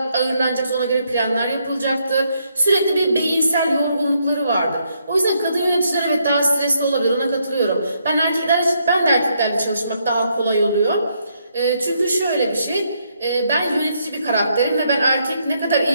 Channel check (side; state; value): both; inverted; correlation -0.75